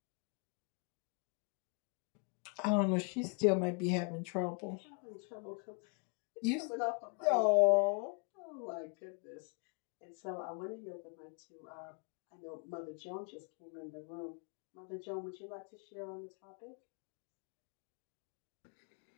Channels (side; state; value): right; quieter; 36.2 dB